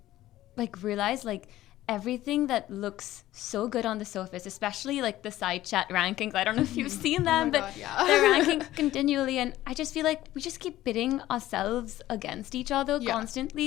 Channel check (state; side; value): quieter; right; 14.9 dB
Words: like realize like everything that looks so good on the surface, especially like the side chat rankings, I don't know if you've seen them, but they're ranking continually, and I just feel like we just keep pitting ourselves against each other